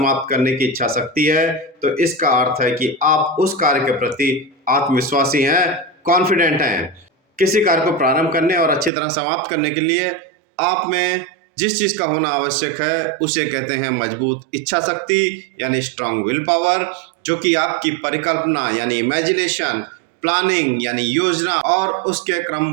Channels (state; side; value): drops out; left; at 8.9 s